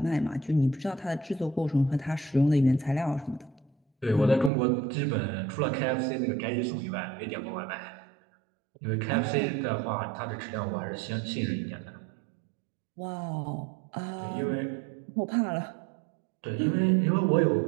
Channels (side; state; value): left; drops out; at 4.5 s